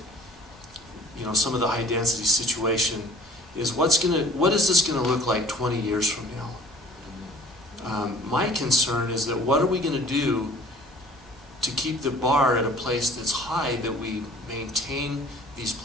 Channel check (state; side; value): normal; both; correlation 0.51